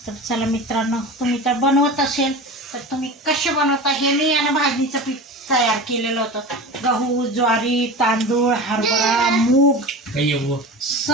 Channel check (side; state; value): both; normal; correlation 0.31